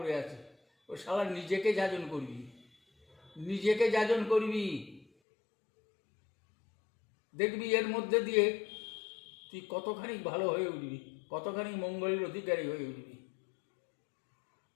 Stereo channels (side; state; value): right; drops out; at 5.1 s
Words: আছি। ও শালা, নিজেকে যাজন করবি, নিজেকে যাজন করবি, দেখবি এর মধ্যে দিয়ে তুই কতখানি ভালো হয়ে উঠবি, কতখানি মঙ্গলের অধিকারী হয়ে উঠবি।